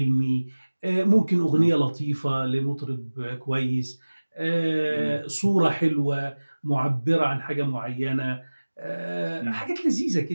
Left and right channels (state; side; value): inverted; both; correlation -1.00